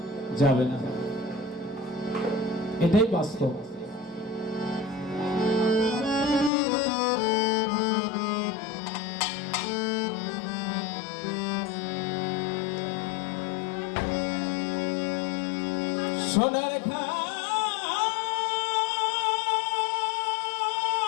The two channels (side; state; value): right; drops out; at 6.5 s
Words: যাবে না, এটাই বাস্তব। সোনার